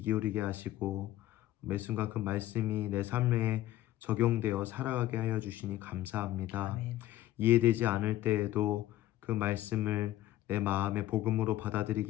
기울이게 하시고 매 순간 그 말씀이 내 삶에 적용되어 살아가게 하여 주시니 감사합니다. 아멘. 이해되지 않을 때에도 그 말씀을 내 마음의 복음으로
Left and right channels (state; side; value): quieter; right; 14.6 dB